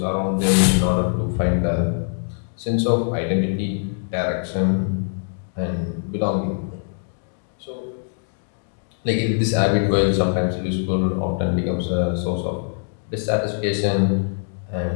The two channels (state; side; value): silent; right; digital silence